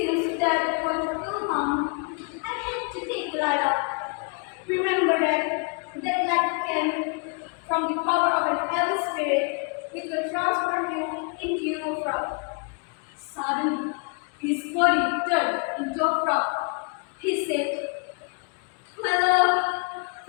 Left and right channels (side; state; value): right; quieter; 36.0 dB